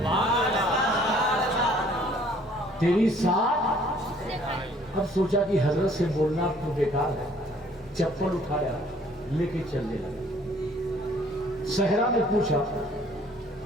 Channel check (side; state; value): both; normal; correlation 0.58